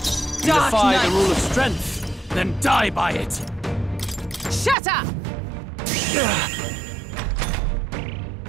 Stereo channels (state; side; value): drops out; left; at 4.8 s